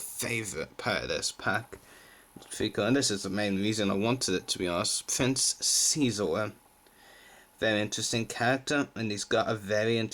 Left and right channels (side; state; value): both; identical; correlation 1.00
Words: favourite part of this pack. And this is the main reason I wanted it, to be honest. Prince Xizor. Very interesting character, and he's got a very